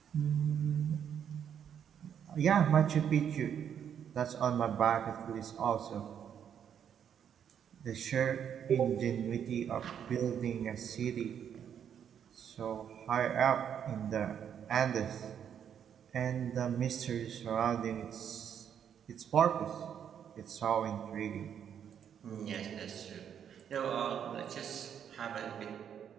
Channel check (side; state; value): left; quieter; 8.6 dB